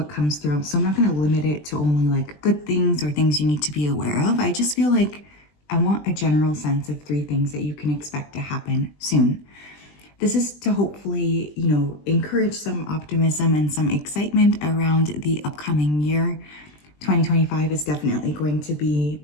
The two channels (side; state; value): right; late; 20 ms